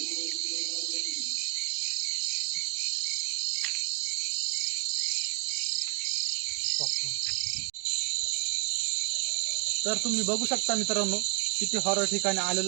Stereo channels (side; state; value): left; quieter; 37.8 dB